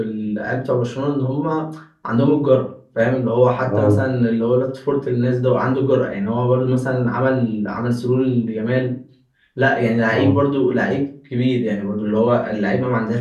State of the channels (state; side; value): identical; both; correlation 1.00